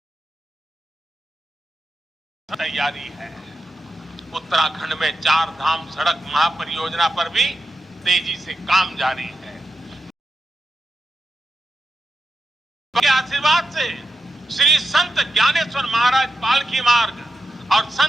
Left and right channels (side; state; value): both; normal; correlation 0.89